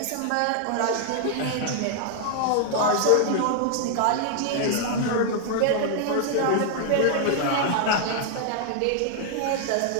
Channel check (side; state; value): both; different; correlation 0.00